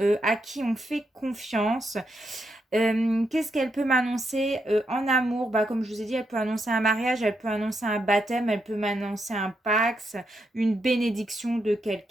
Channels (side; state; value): both; normal; correlation 0.81